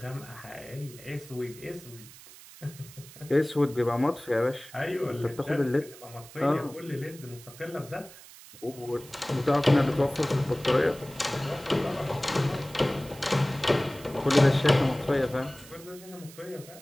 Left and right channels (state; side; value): noise; right; hiss, 19 dB below the sound